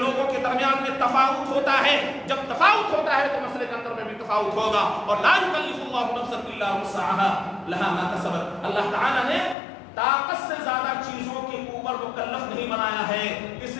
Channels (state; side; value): drops out; right; at 9.6 s